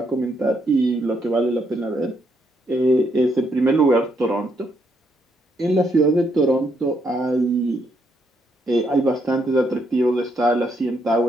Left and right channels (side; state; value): both; normal; correlation 0.75